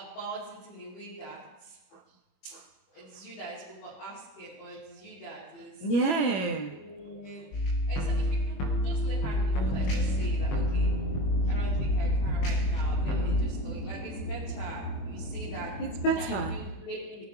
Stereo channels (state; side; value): late; right; 21 ms